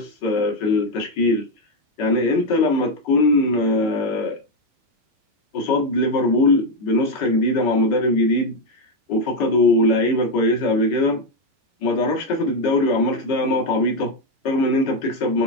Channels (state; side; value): normal; both; correlation 0.06